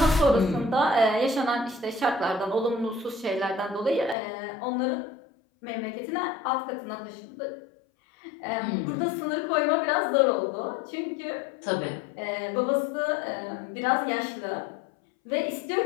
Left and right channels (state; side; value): drops out; right; at 4.2 s